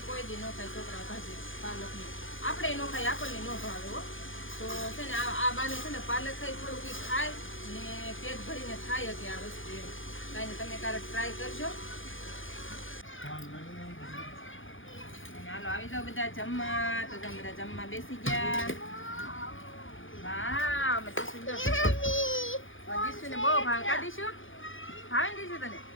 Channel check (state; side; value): late; right; 0.58 ms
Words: કોઈ દી ન ખાય છોકરા ભાજી પાલકની. આપણે ન ખાય, આપણને ન ભાવે હો. તો છે ને આ બાને છે ને પાલક ખાઈ થોડુંક ખાય ને પેટ ભરીને ખાય કે આ વસ્તુ એમ. કાંઈ નહીં, તમે ક્યારેક ટ્રાય કરજો. હાલો આવી જાઓ બધા જમવા. તો તમે બધા જમવા બેસી ગયા. વાહ, અમે દીશુને બહુ ભાવે. કા દીશુ ભાવે ને? દીશુ તને